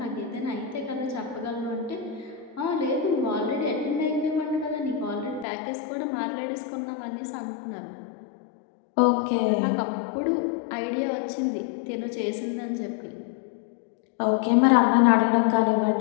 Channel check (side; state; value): right; drops out; at 5.5 s